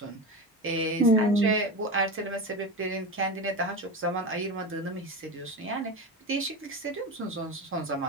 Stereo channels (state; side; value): normal; both; correlation 0.23